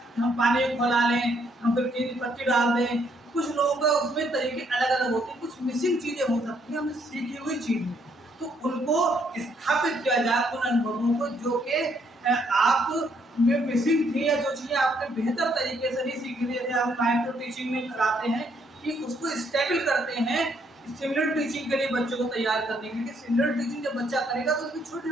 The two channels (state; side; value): normal; both; correlation 0.71